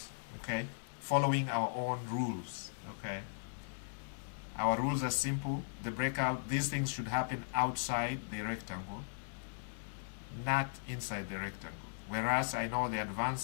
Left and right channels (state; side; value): silent; right; digital silence